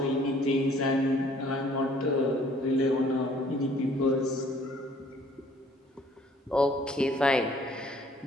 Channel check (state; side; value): normal; both; correlation 0.58